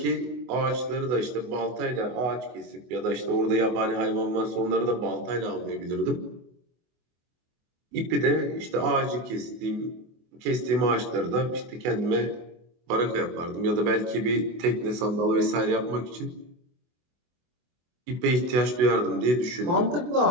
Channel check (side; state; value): left; late; 24 ms